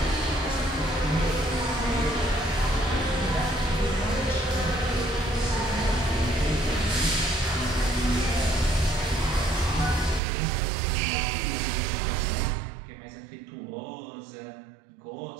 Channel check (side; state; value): left; drops out; at 10.2 s